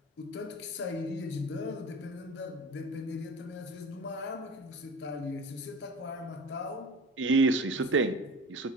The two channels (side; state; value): both; normal; correlation 0.36